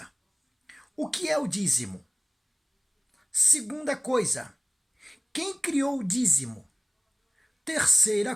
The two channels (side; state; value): both; identical; correlation 1.00